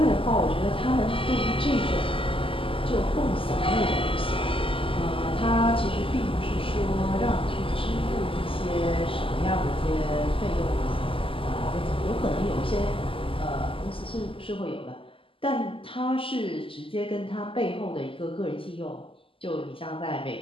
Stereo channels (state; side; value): late; right; 0.26 ms